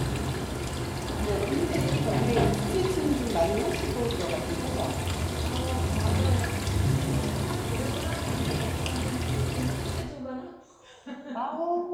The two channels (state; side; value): identical; both; correlation 1.00